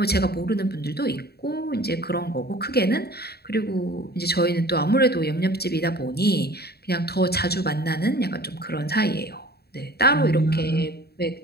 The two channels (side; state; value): right; late; 0.46 ms